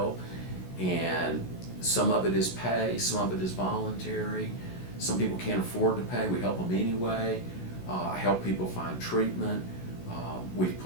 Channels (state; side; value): late; right; 16 ms